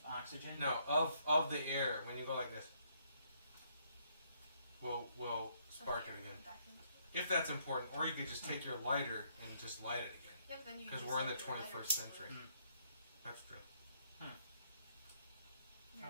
oxygen? No, of the air when you go like this. Will spark Okay, it again. back into it. If that's important, or you could just take your lighter and just light it again. Yeah, but then you 'Cause use we're in the your lighter 21st fluid. century. Mm. That's true. You're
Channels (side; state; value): both; inverted; correlation -0.70